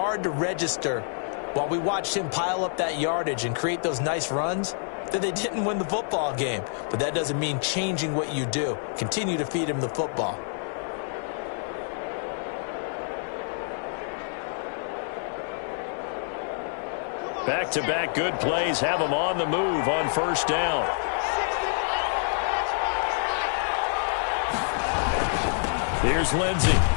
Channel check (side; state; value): right; silent; digital silence